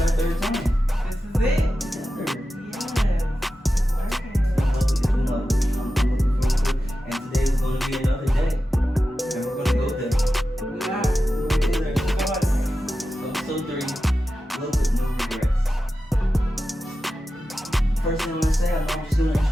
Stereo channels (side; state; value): both; normal; correlation 0.92